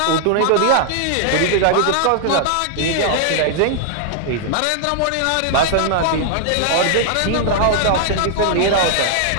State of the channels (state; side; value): different; both; correlation 0.00